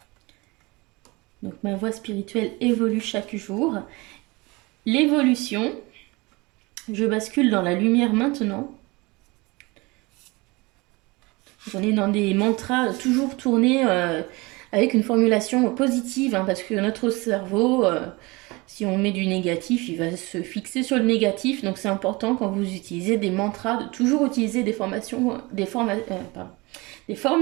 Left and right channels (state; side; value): quieter; left; 24.4 dB